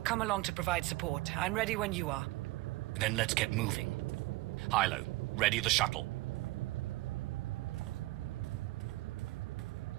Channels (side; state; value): left; quieter; 19.9 dB